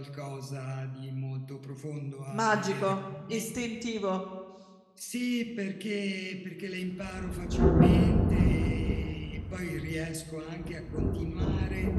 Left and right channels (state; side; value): identical; both; correlation 1.00